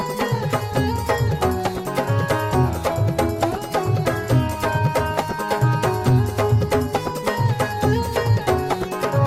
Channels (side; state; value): both; identical; correlation 1.00